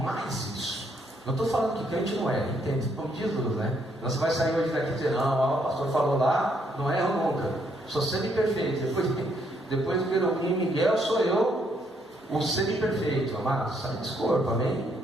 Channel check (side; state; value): both; normal; correlation 0.72